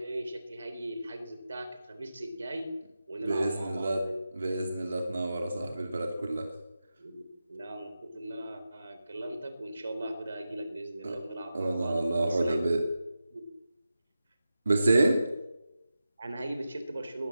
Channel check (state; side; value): inverted; both; correlation -0.92